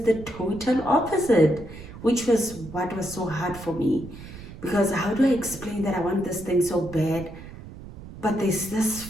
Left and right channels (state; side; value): noise; right; rumble, 15 dB below the sound